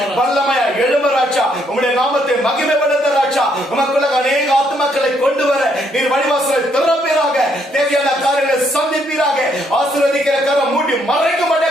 வல்லமையா எழும்ப ராஜா. உம்முடைய நாமத்தை மகிமைப்படுத்த ராஜா. உமக்குள்ள அநேக ஆத்துமக்களை கொண்டு வர நீர் வழிவாசலை திறப்பீராக. தேவையான காரியங்களை சந்திப்பீராக. ஆசீர்வதிக்கிற கரம் மூடி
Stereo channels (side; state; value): both; normal; correlation 0.72